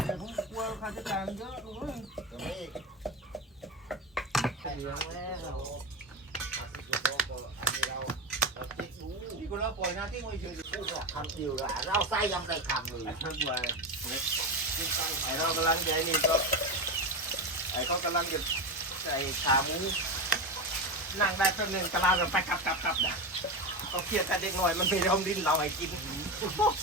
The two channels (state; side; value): normal; both; correlation 0.18